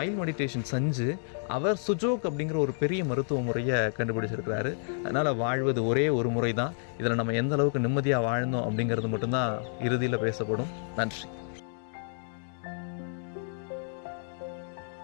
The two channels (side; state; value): right; silent; 58 dB below the other